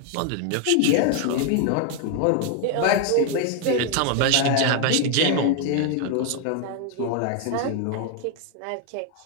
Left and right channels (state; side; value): different; both; correlation 0.00